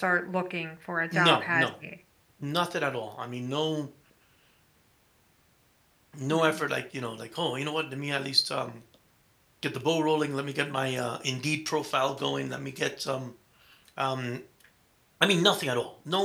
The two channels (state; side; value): identical; both; correlation 1.00